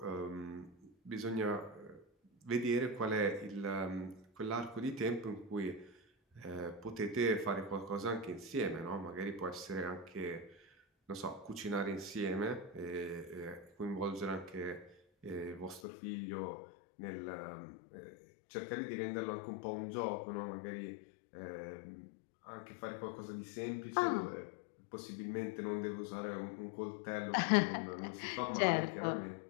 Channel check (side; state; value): right; drops out; at 15.8 s